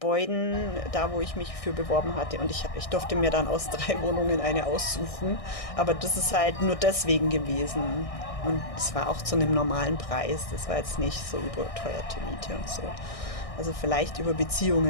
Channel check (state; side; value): late; right; 1.6 ms